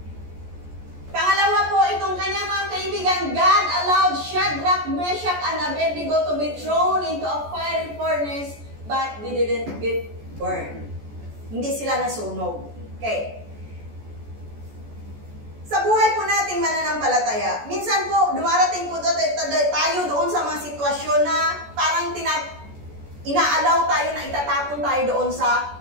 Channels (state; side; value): late; left; 14 ms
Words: Pangalawa po, itong kanyang mga kaibigan, God allowed Shadrach, Meshach, and Abednego to be thrown into a fiery furnace, but they didn't get burned. Hindi sila nasunog. Okay. Sa buhay po nating mananampalataya, minsan po, dumarating po tayo doon sa mga sitwasyon na parang inaalaw tayo na itatapon tayo doon sa